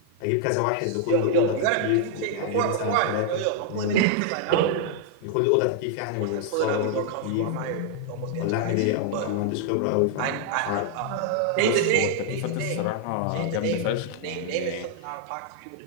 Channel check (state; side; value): different; both; correlation 0.00